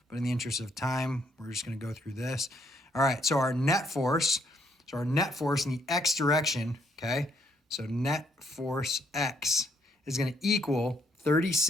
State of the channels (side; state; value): both; normal; correlation 0.72